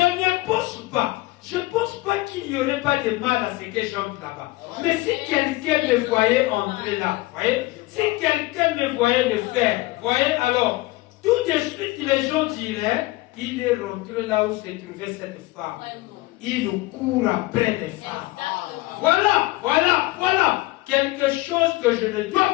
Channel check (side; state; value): right; quieter; 20.5 dB